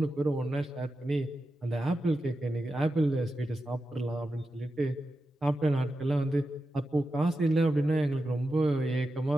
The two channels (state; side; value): normal; both; correlation 0.90